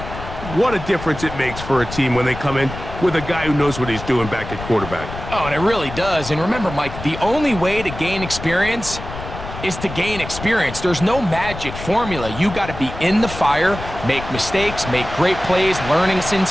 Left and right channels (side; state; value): left; noise; rumble, 10 dB below the sound